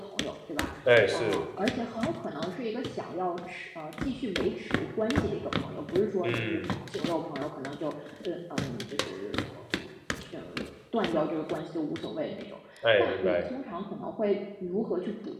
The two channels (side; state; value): both; identical; correlation 1.00